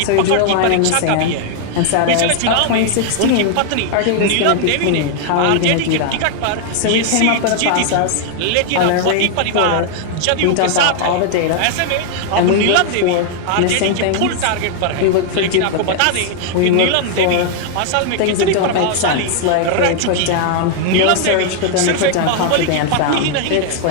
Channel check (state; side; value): different; both; correlation 0.00